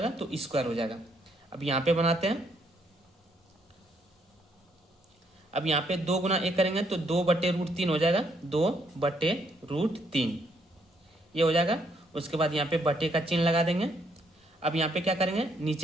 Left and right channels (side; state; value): both; normal; correlation 0.72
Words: तो स्क्वायर हो जाएगा। अब यहाँ पे बनाते हैं। अब यहाँ पे 2 गुना 1 करेंगे तो 2/√3 हो जाएगा, 2/√3 ये हो जाएगा। उसके बाद यहाँ पे बटे का चिन्ह लगा देंगे। अब यहाँ पे क्या करेंगे?